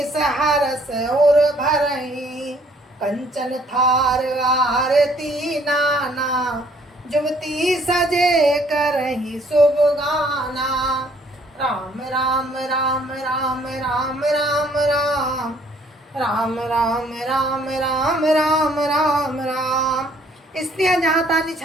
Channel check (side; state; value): both; normal; correlation 0.62